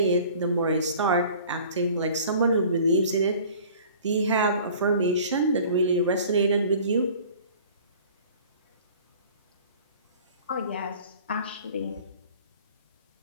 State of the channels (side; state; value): both; inverted; correlation -0.47